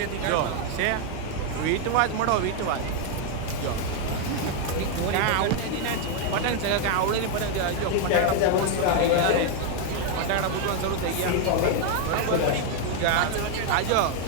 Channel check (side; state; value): both; different; correlation 0.01